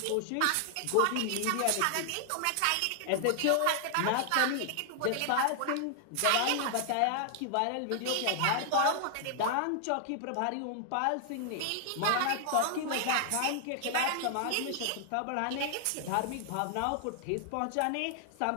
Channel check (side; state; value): both; different; correlation 0.00